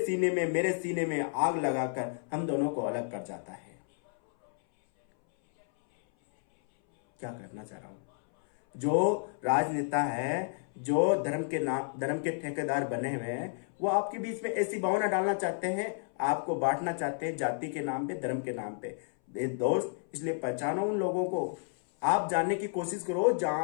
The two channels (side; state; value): right; silent; 57 dB below the other